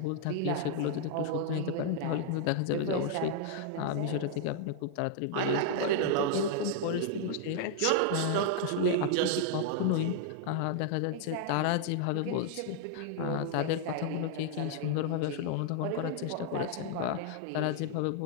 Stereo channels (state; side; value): different; both; correlation 0.00